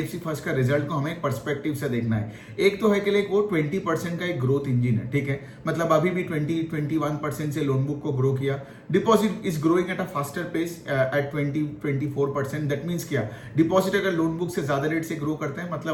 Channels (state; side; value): identical; both; correlation 1.00